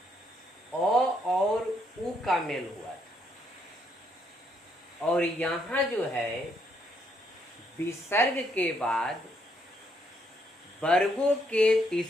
अ और उ का मेल हुआ था और यहाँ जो है विसर्ग के बाद वर्गों के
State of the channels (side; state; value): both; normal; correlation 0.73